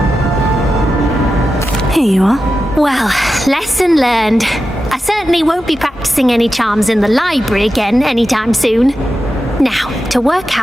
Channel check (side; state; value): both; normal; correlation 0.91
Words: Here you are. Well, lesson learned. I certainly won't be practicing any charms in the library again anytime soon. Now, to work